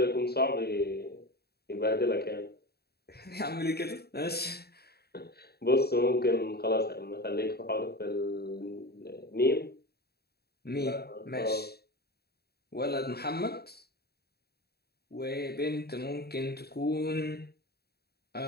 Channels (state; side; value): late; right; 0.46 ms